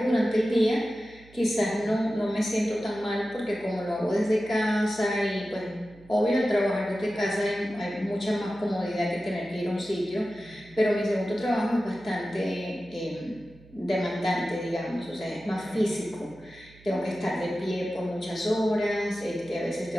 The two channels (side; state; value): right; noise; hum, 24 dB below the sound